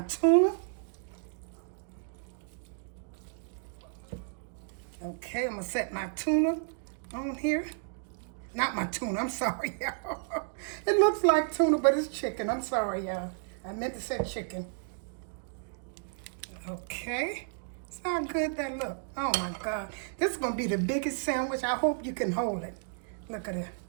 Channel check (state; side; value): silent; left; digital silence